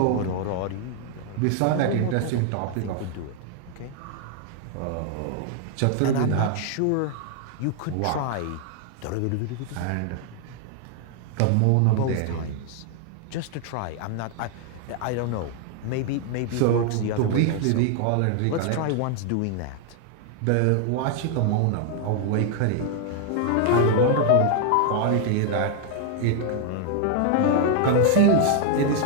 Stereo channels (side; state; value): both; different; correlation 0.00